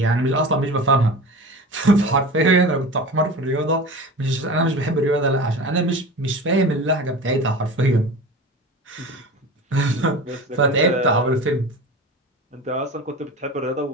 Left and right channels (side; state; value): both; normal; correlation 0.33